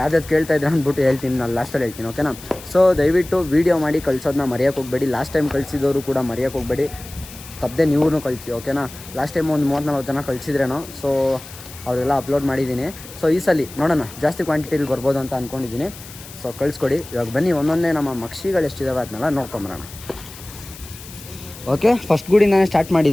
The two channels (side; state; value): left; noise; hiss, 16 dB below the sound